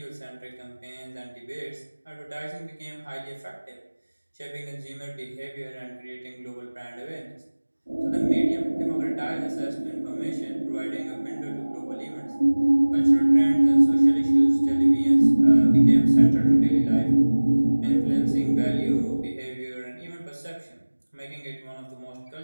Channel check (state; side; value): inverted; both; correlation -1.00